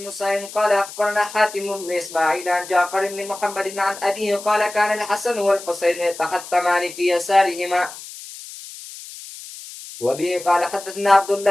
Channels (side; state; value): left; noise; hiss, 14 dB below the sound